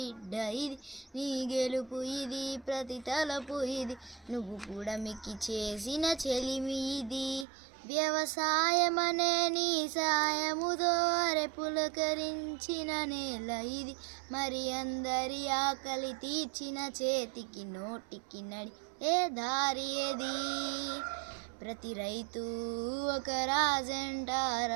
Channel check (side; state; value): left; drops out; at 7.5 s